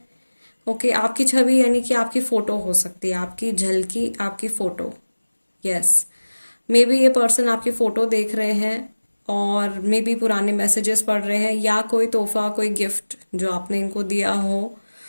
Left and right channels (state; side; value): inverted; both; correlation -1.00